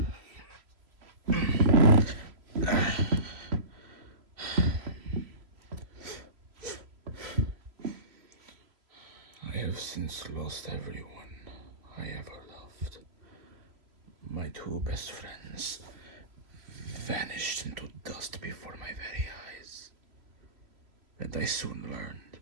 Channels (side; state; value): left; late; 3.0 ms